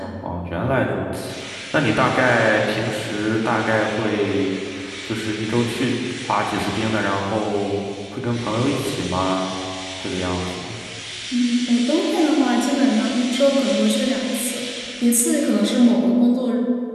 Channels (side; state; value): both; identical; correlation 1.00